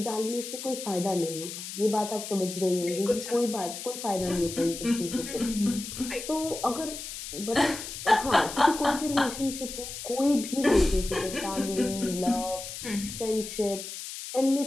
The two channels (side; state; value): left; noise; hiss, 9 dB below the sound